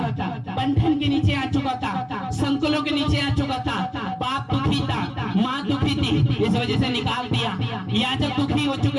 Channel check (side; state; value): both; identical; correlation 1.00